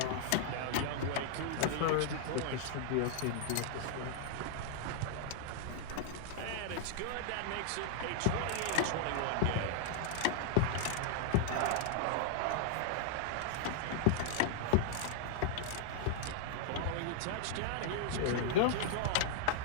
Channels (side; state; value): both; different; correlation -0.01